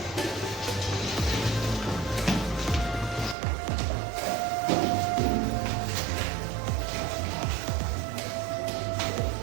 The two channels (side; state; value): left; drops out; at 3.4 s